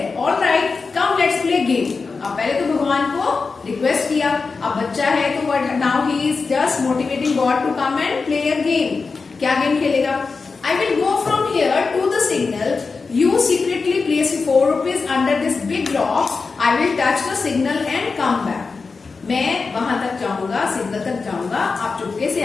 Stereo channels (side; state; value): right; quieter; 4.5 dB